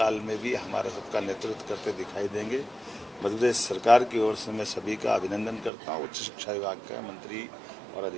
में भी हमारा सबका नेतृत्व करते दिखाई देंगे। मध्य प्रदेश सरकार की ओर से मैं सभी का अभिनंदन करता हूँ। उच्च शिक्षा विभाग का मंत्री और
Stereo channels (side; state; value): left; drops out; at 5.7 s